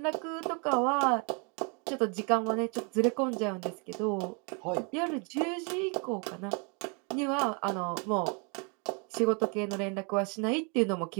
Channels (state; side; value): quieter; left; 35.1 dB